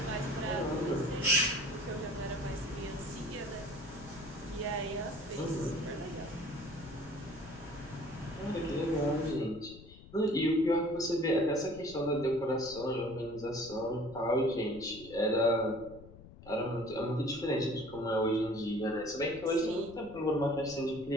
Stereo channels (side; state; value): left; noise; rumble, 18 dB below the sound